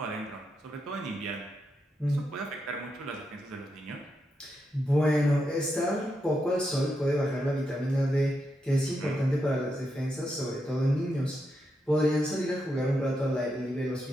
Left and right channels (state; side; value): normal; both; correlation 0.84